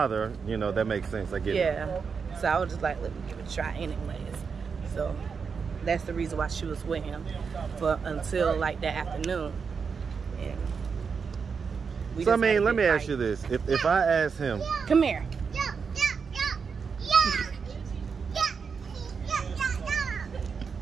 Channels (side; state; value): left; quieter; 5.7 dB